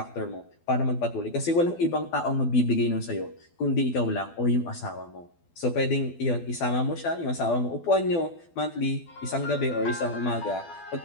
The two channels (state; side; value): late; right; 12 ms